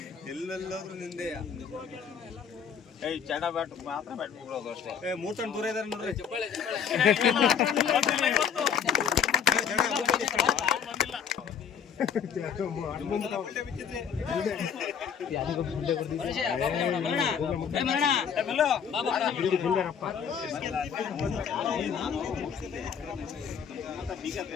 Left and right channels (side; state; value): right; quieter; 7.5 dB